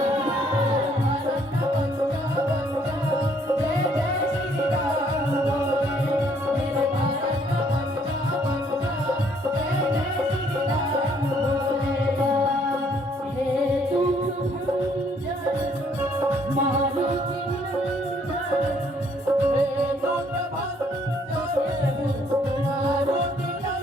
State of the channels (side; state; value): both; normal; correlation 0.65